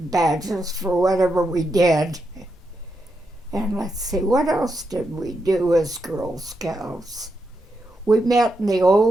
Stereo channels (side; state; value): both; normal; correlation 0.84